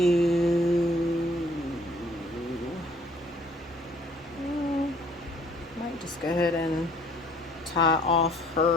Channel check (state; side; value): normal; both; correlation 0.58